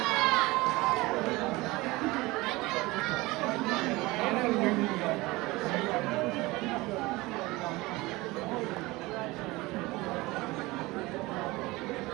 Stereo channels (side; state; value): left; quieter; 21.5 dB